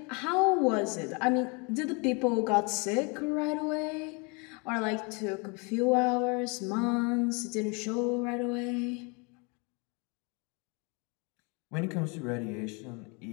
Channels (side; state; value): right; quieter; 31.7 dB